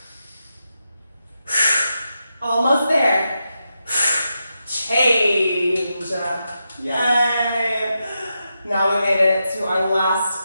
Almost there. Change. Yay. Now we made it to our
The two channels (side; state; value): both; inverted; correlation -0.87